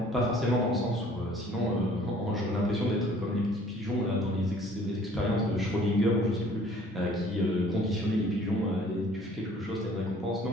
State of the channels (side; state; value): both; normal; correlation 0.55